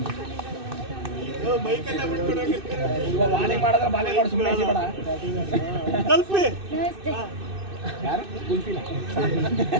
ಬಾಲಿಂಗ್ ಮಾಡಿದ್ರೆ ಬಾಲಿಂಗ್ ಮಾಡಿ ಸುಮ್ಮನೆ ಬೇಡ. ಯಾರು ಕುಲ್ಫಿನ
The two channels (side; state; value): left; late; 2.6 ms